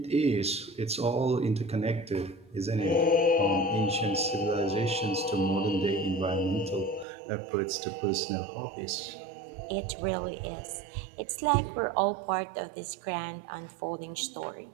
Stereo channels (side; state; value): left; drops out; at 7.1 s